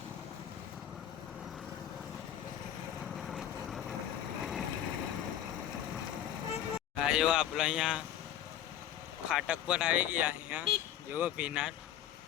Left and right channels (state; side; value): quieter; right; 11.1 dB